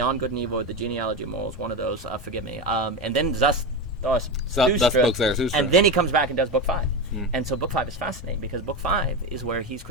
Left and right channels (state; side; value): normal; both; correlation 0.18